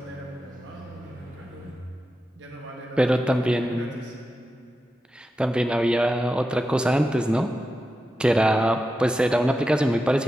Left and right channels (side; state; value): both; normal; correlation 0.90